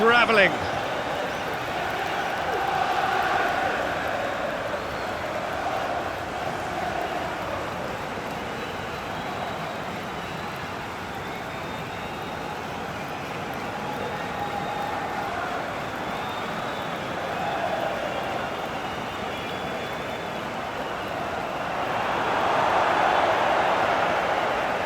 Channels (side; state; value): both; identical; correlation 1.00